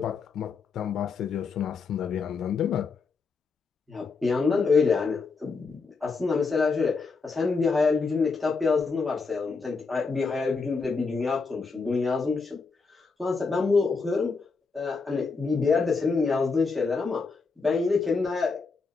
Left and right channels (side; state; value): right; quieter; 4.5 dB